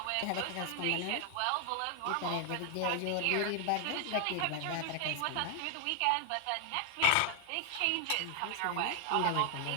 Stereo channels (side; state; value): both; different; correlation 0.00